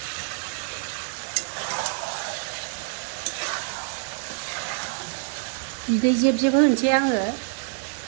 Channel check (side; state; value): left; silent; digital silence